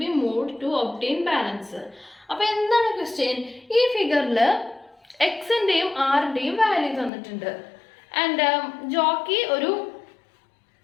be moved to obtain balance? അപ്പോൾ എന്താണ് ക്വസ്റ്റ്യൻ? ഈ ഫിഗറിൽ എക്സിൻ്റെയും ആറിൻ്റെയും വാല്യൂ തന്നിട്ടുണ്ട്. ആൻഡ് ജോക്കി ഒരു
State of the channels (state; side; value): drops out; right; at 7.1 s